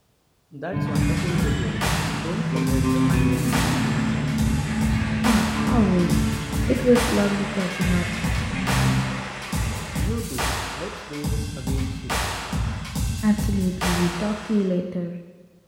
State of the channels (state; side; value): identical; both; correlation 1.00